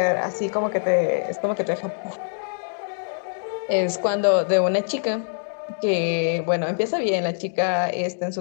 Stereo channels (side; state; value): right; silent; digital silence